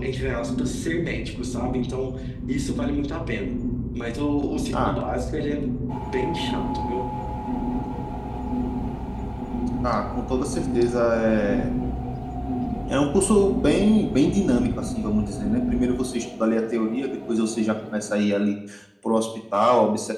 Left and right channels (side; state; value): both; identical; correlation 1.00